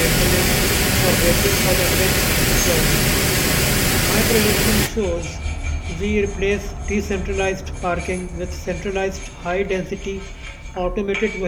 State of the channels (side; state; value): both; identical; correlation 1.00